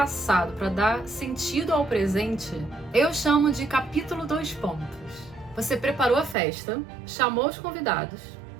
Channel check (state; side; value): drops out; left; at 6.4 s